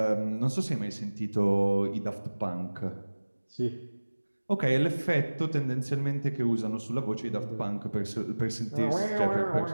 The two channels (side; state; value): both; inverted; correlation -1.00